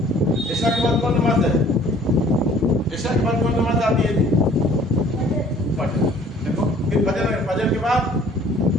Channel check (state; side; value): normal; both; correlation 0.54